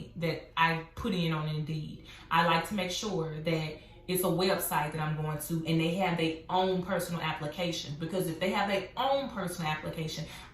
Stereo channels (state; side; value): identical; both; correlation 1.00